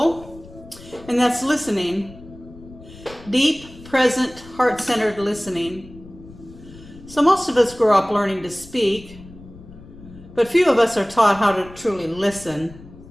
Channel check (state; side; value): noise; left; rumble, 19 dB below the sound